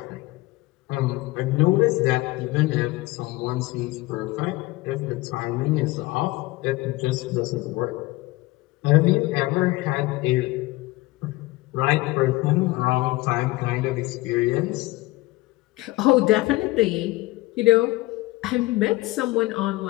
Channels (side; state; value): right; quieter; 20.1 dB